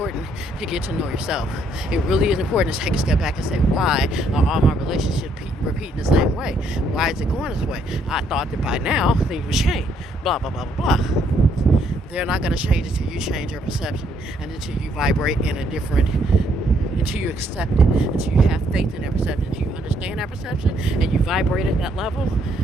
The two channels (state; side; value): normal; both; correlation 0.70